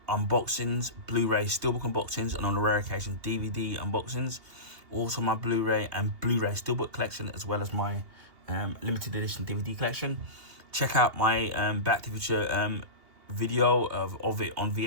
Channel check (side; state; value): left; late; 2.8 ms